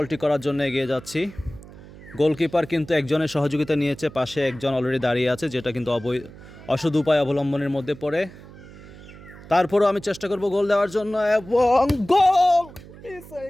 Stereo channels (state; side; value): noise; right; hum, 18 dB below the sound